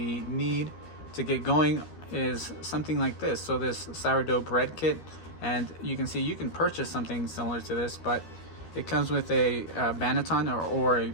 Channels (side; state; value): right; late; 13 ms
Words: need to get going is something like this. So this sourdough bread kit, and you can see you can purchase something similar to this, but it comes with a banneton or a